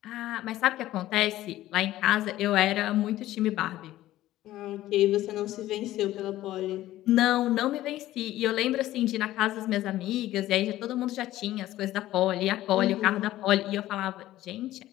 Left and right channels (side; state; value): right; quieter; 14.8 dB